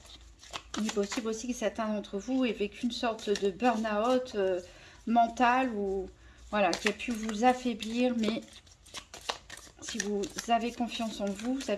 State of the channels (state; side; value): identical; both; correlation 1.00